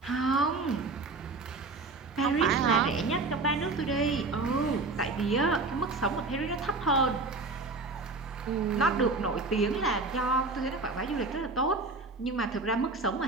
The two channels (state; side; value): quieter; left; 3.6 dB